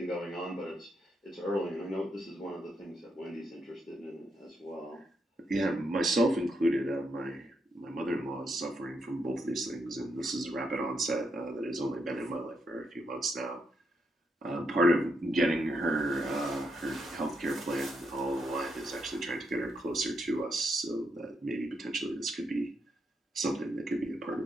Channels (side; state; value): both; normal; correlation 0.80